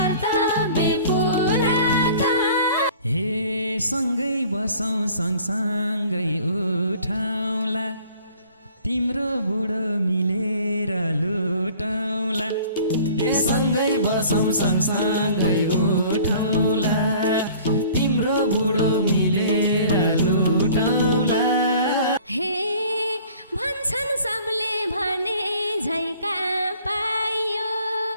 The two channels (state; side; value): inverted; both; correlation -0.50